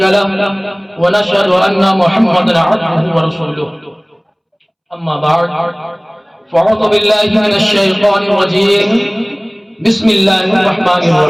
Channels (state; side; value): identical; both; correlation 1.00